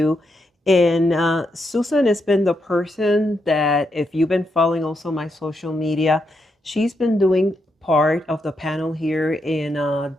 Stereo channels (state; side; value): normal; both; correlation 0.82